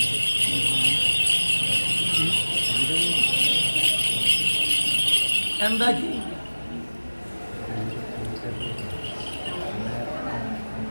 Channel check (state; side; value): inverted; both; correlation -1.00